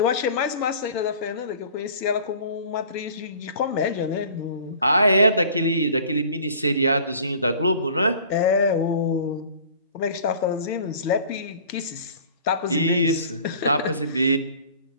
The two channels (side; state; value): both; inverted; correlation -0.47